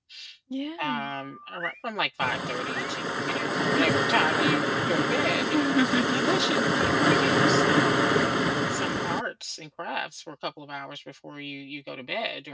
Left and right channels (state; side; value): identical; both; correlation 1.00